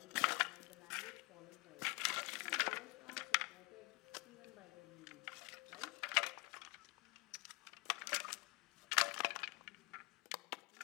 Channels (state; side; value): quieter; right; 26.7 dB